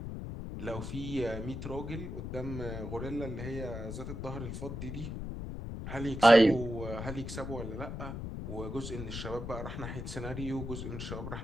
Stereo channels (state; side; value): noise; left; rumble, 6 dB below the sound